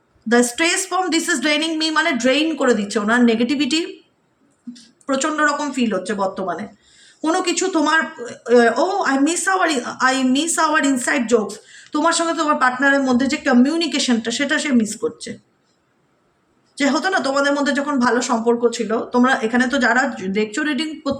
The stress from this is ড্রেইনিং me মানে ড্রেইন করে দিচ্ছে। ওনার নেগেটিভিটি প্রচণ্ড রকম ফিল হচ্ছে বর্তমানে। কোনো কিছু তোমার I miss hour inside jokes, তোমার সঙ্গে তোমার পার্টনারের মধ্যে যে কমিউনিকেশনটা, সেটা সে মিস করছে। যে হতো না তোমাদের মধ্যে যখন ভালো সম্পর্ক ছিল, তোমরা এখানে তো যারা দেখছো রিডিং,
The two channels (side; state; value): both; identical; correlation 1.00